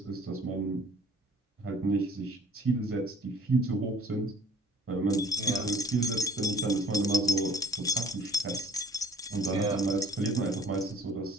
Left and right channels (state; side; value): normal; both; correlation 0.52